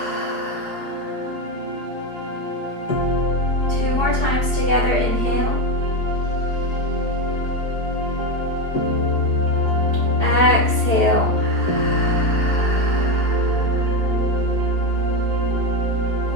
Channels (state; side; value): late; right; 4.8 ms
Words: 2 more times together, inhale. Exhale.